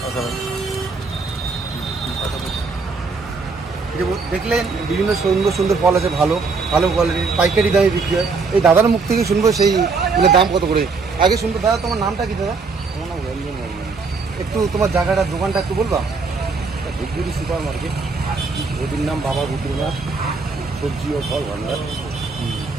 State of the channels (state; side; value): quieter; left; 4.4 dB